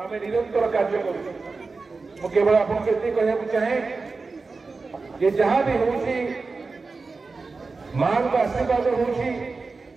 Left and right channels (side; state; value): left; quieter; 4.1 dB